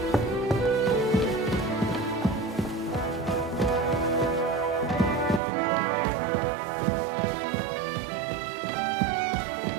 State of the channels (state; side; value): drops out; left; at 5.4 s